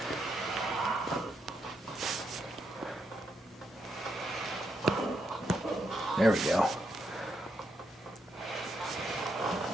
There we go.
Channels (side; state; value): both; normal; correlation 0.80